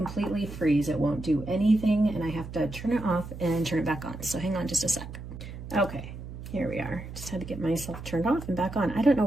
freeze. It won't do anything, and I have to turn it off and turn it back on. So hang on just a sec. Okay, here we are. Just had to get myself turned off and back on. I don't know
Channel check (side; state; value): right; noise; hum, 11 dB below the sound